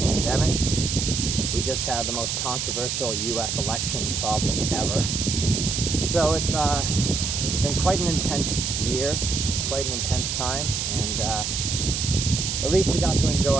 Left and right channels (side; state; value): right; noise; hiss, 1 dB below the sound